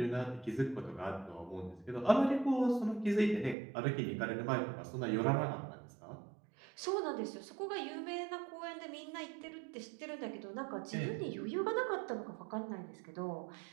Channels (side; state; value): left; drops out; at 3.6 s